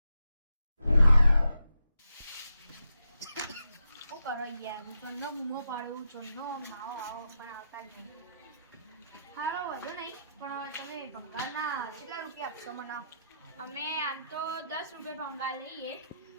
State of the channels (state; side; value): inverted; both; correlation -0.83